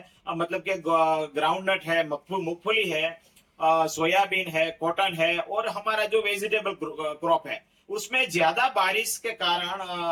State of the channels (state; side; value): identical; both; correlation 1.00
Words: मतलब कि ग्राउंड नट है, मूंगफली है, सोयाबीन है, कॉटन है और हमारा जो वेजिटेबल क्रॉप है, उसमें ज्यादा बारिश के